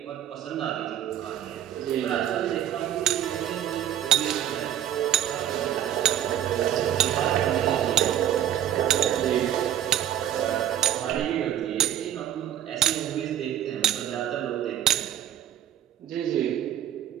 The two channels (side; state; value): left; quieter; 11.0 dB